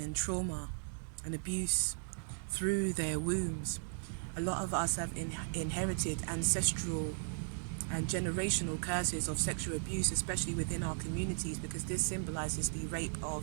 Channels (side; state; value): left; silent; digital silence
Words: and trauma and abuse through their wombs. A lot of us have inherited ancestral and generational curses of sexual abuse, especially within our communities, because this symbolizes the rape